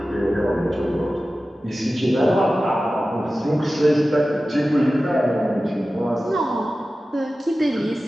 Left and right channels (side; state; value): both; normal; correlation 0.95